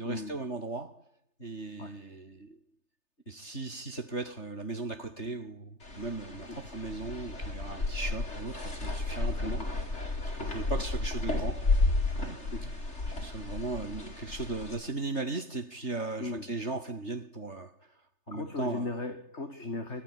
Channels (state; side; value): late; right; 3.3 ms